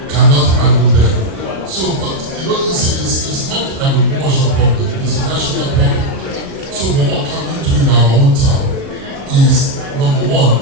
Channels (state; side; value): late; left; 37 ms